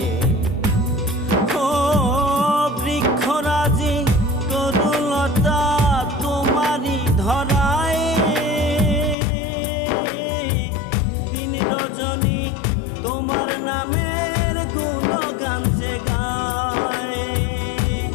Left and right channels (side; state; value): right; drops out; at 9.2 s